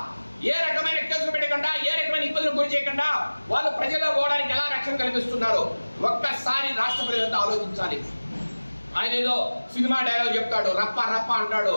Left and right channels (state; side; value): inverted; both; correlation -1.00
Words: ఏ రకమైన కేసులు పెట్టకుండా ఏ రకమైన ఇబ్బందులు గురి చేయకుండా వాళ్ళు ప్రజల్లో పోవడానికి ఎలా రక్షణ కల్పిస్తున్నారో ఒక్కసారి రాష్ట్ర ప్రజలంతా ఆలోచించాలి. ఆయన ఏదో సినిమా డైలాగ్ చెప్తాడు, రప్ప రప్ప అంటాడు,